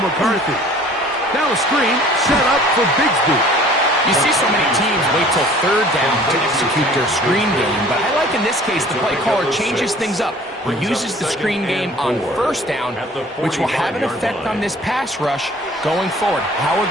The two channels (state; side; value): normal; both; correlation 0.50